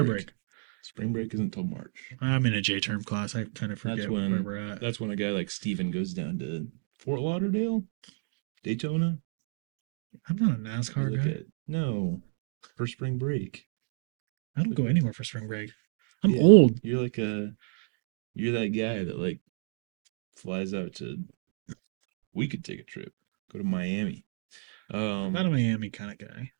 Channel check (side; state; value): left; silent; 58 dB below the other